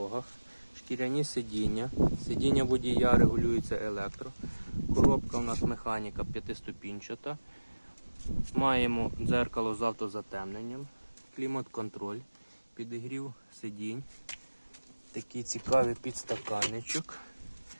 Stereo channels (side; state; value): both; inverted; correlation -1.00